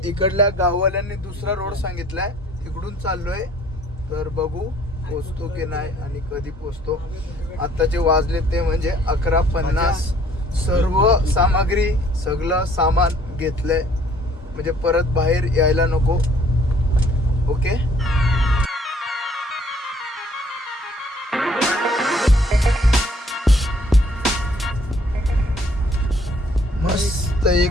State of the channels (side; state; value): both; normal; correlation 0.59